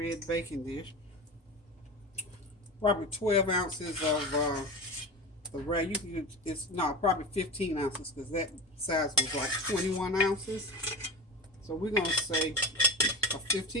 baking dish. Probably 12 ounces of the rag. You can use, probably 15 ounces because that size was like 21 ounces. So we're going to say a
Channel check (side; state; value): both; normal; correlation 0.27